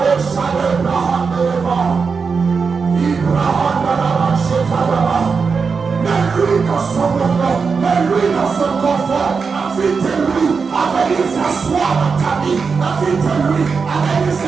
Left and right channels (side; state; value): left; quieter; 5.2 dB